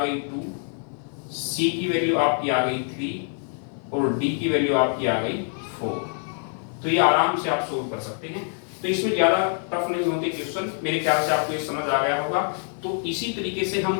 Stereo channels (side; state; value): right; silent; 55 dB below the other